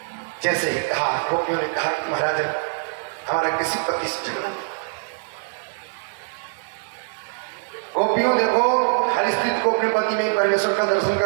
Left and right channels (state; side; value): silent; left; digital silence